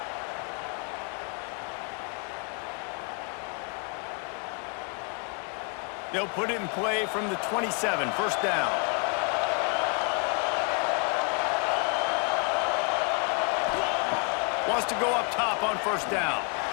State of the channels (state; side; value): quieter; right; 37.3 dB